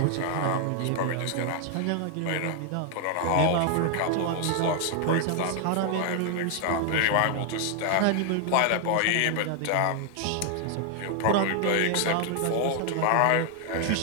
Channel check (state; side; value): different; both; correlation 0.00